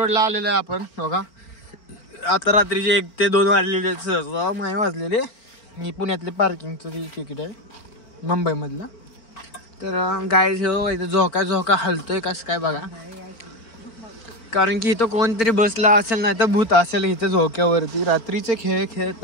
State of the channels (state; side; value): late; right; 4.4 ms